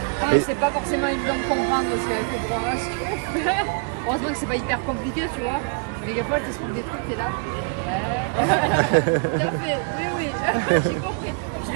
Après, c'est pas forcément évident de comprendre parce qu'avec le programme, heureusement que c'est pas hyper compliqué, tu vois. Mais des fois, tu expliques des trucs, t'es là. Ouais. Tout à fait, oui. J'ai compris. Je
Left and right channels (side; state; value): left; quieter; 36.2 dB